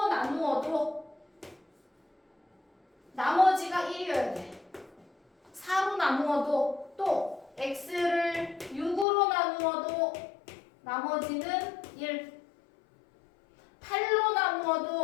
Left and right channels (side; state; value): right; drops out; at 9.1 s